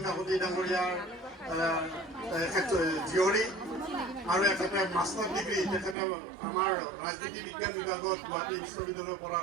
কাকতি ডাঙৰীয়াৰ জীয়ৰী আৰু এখেতে মাষ্টাৰ ডিগ্ৰী তেখেতে আমাৰ ৰাজনীতি বিজ্ঞান বিভাগত গুৱাহাটী বিশ্ববিদ্যালয়ৰ পৰা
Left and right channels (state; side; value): drops out; left; at 6.0 s